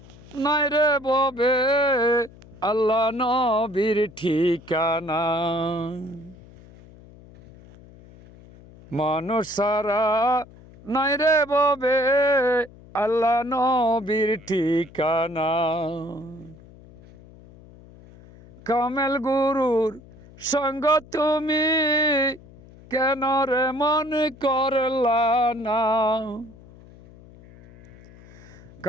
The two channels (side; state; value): left; noise; hum, 22 dB below the sound